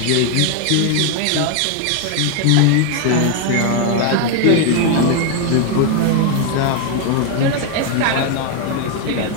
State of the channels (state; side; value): different; both; correlation 0.01